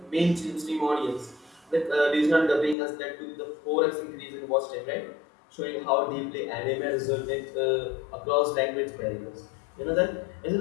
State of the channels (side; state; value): right; drops out; at 2.8 s